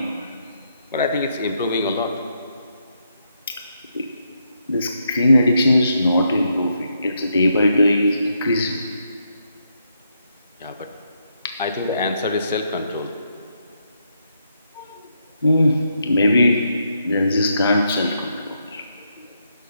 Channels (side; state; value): both; inverted; correlation -0.78